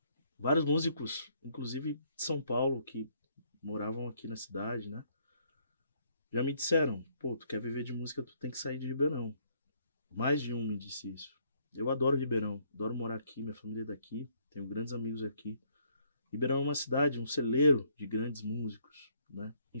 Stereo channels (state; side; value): inverted; both; correlation -0.67